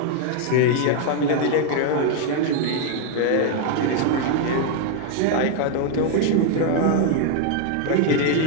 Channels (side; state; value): both; different; correlation 0.00